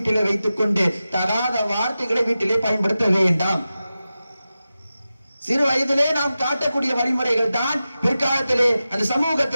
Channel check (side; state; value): both; inverted; correlation -0.93